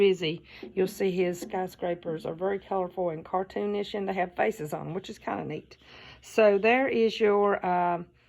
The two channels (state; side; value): identical; both; correlation 1.00